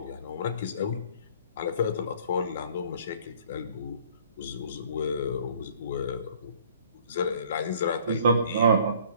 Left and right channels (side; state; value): both; inverted; correlation -0.55